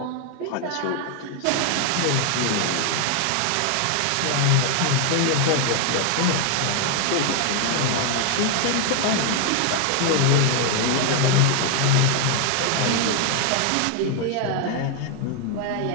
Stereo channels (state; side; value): different; both; correlation 0.00